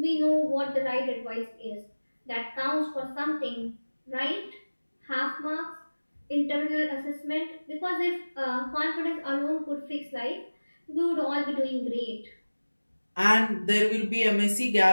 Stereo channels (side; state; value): both; inverted; correlation -1.00